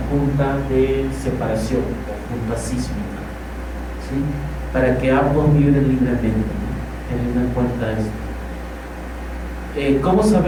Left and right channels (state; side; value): identical; both; correlation 1.00